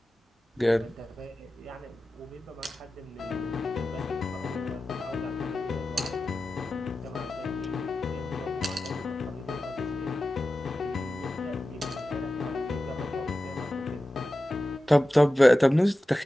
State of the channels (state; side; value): normal; both; correlation 0.94